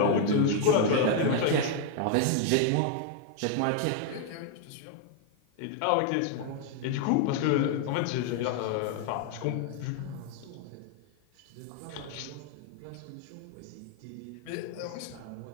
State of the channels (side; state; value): both; different; correlation 0.00